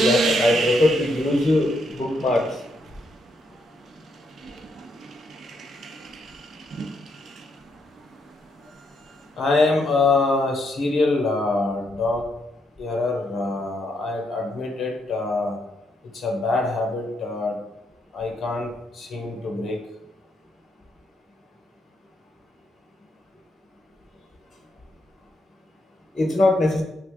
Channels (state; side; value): normal; both; correlation 0.77